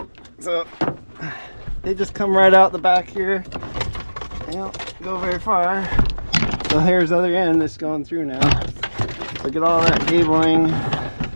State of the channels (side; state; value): both; inverted; correlation -1.00